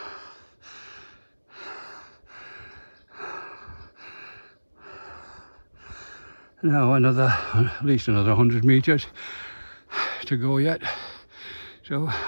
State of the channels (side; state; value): both; inverted; correlation -1.00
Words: Now at least another 100 metres to go yet, so